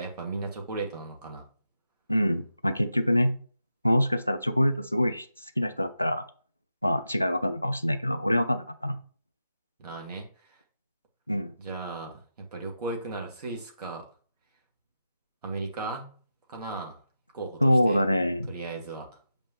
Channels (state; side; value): inverted; both; correlation -0.90